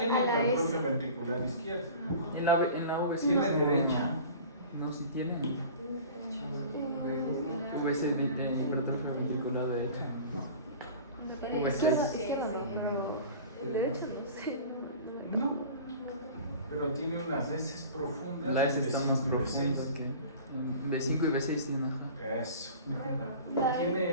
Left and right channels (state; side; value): inverted; both; correlation -0.40